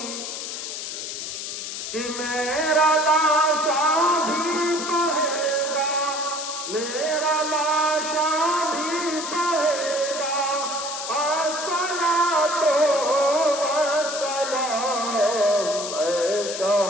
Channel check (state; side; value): noise; left; hiss, 6 dB below the sound